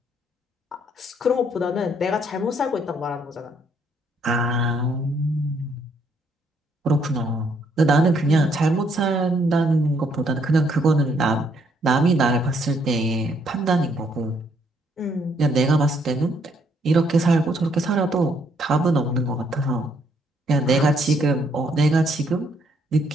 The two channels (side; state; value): both; normal; correlation 0.70